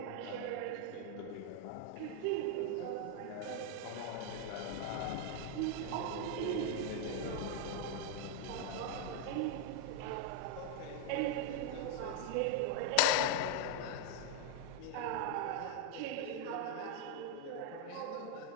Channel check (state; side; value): different; both; correlation 0.00